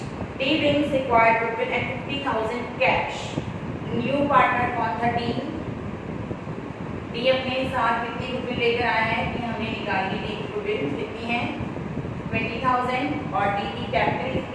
D brings required goodwill at 50,000 cash। New partner कौन था? डी। डी अपने साथ कितनी गुडविल लेकर आया है कि हमने निकाली। डी की गुडविल कितनी है 20,000 और डी की कैपिटल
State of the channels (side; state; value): both; identical; correlation 1.00